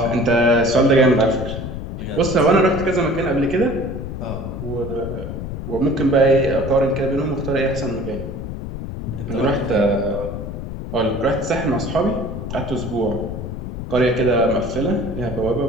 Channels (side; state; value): left; noise; rumble, 7 dB below the sound